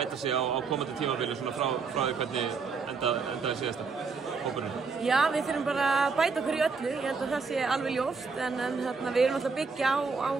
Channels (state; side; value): quieter; left; 4.9 dB